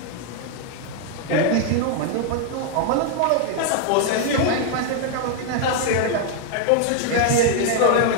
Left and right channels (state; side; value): different; both; correlation 0.00